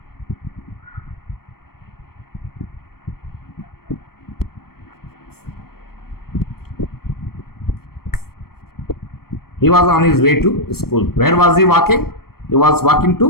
He was on his way to school. Where was he walking? He was walking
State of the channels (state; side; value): late; right; 0.94 ms